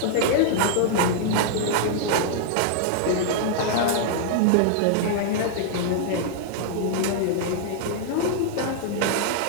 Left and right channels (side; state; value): both; different; correlation -0.01